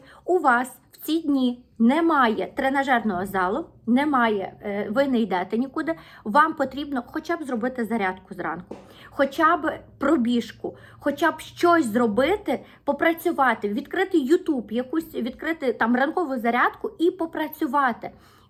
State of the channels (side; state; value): both; identical; correlation 1.00